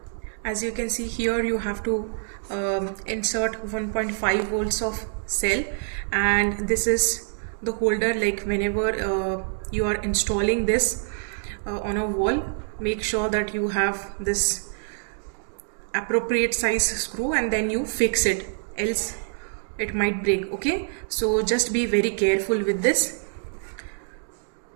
as you can see here, you have to insert 1.5 volts of cell, and this is the holder. Like whenever you are installing this on a wall, make sure that you have this appropriate size screw and then you fix it, else it might break. Okay, so just be very careful with this.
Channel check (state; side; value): silent; left; digital silence